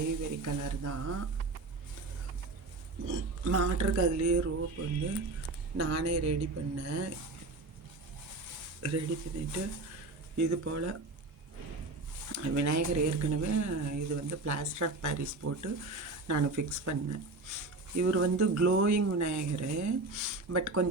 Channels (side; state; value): left; quieter; 3.2 dB